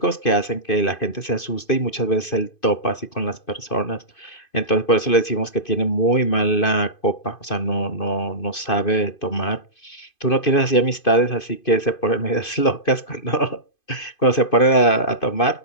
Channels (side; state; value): right; late; 2.5 ms